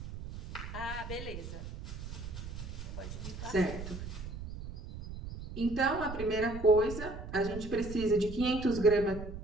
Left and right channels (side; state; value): right; noise; rumble, 9 dB below the sound